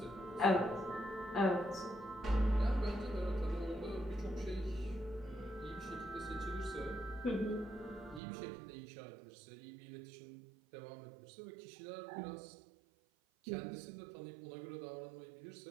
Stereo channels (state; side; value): drops out; left; at 8.2 s